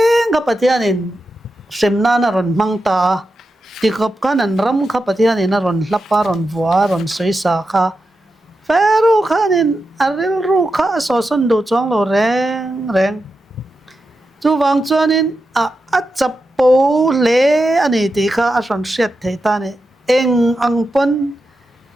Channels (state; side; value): normal; both; correlation 0.89